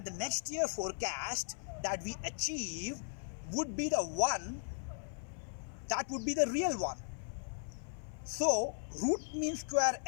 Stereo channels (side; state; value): right; silent; 53 dB below the other